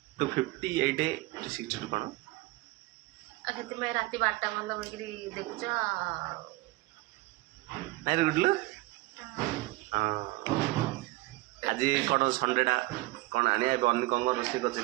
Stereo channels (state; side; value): quieter; left; 20.8 dB